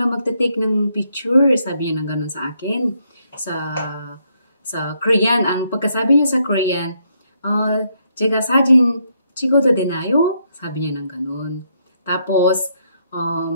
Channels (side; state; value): both; inverted; correlation -0.75